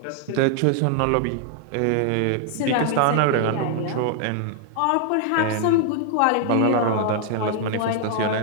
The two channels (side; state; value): both; different; correlation 0.00